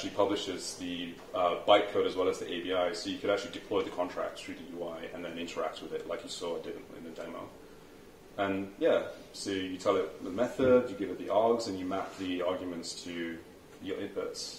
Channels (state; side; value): identical; both; correlation 1.00